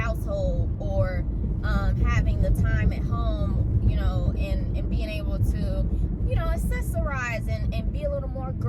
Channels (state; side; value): identical; both; correlation 1.00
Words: or having the time at home, you know, and being able to, you know, accessorize and be a little more